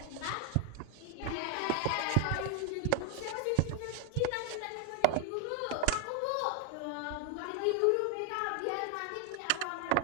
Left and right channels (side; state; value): both; different; correlation 0.00